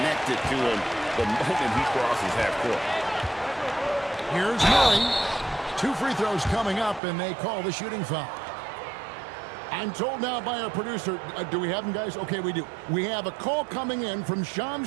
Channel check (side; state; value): left; drops out; at 7.0 s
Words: to him the moment he crosses half court. Here's Murray. 2 free throws coming up, and they call the shooting foul. I'm told now by our producer, do we have him, guys? Okay, we do. We have a call coming in from